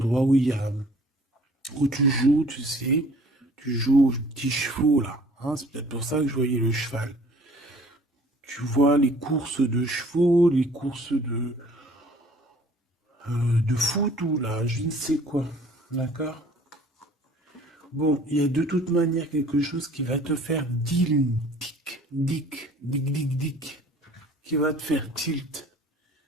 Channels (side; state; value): both; normal; correlation 0.53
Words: où tu joues, tu sais, tu joues aux petits chevaux là. Hein, c'est peut-être pour ça que je voyais le cheval. Tu vois les courses de chevaux, les courses de foot ou là, je ne sais quoi. D'accord? Bon, il y a de toute manière quelque chose qui va te faire dick, qui va te faire tilt.